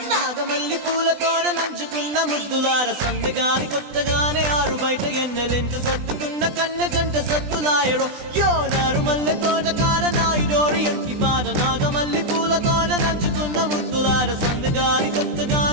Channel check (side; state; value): left; late; 20 ms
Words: మల్లి పూలతోన నంచుకున్న ముద్దులార సందగాని కొత్తగానే ఆరు బయట ఎన్నెలెంట సర్దుకున్న కన్నె జంట సద్దులాయరో యోనారు మల్లె తోటకార నాయుడోరు ఎంటి పాట నాగమల్లి పూలతోన నంచుకున్న ముద్దులార సందగాని